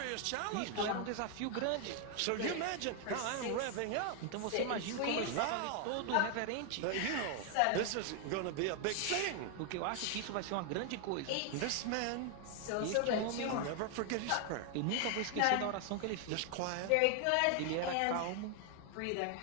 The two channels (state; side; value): different; both; correlation 0.00